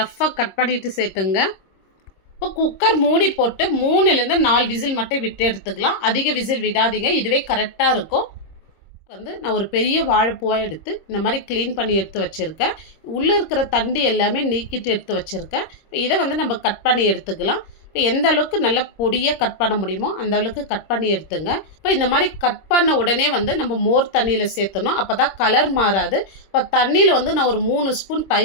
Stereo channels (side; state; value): right; late; 26 ms